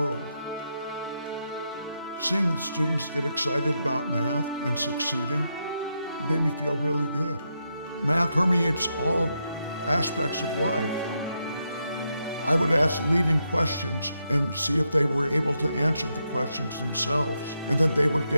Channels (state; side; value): inverted; both; correlation -0.83